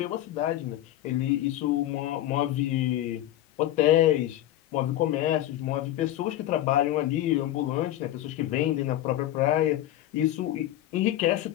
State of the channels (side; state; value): right; quieter; 13.7 dB